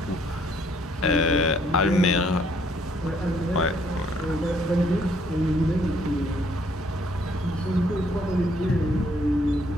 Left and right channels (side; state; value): both; normal; correlation 0.65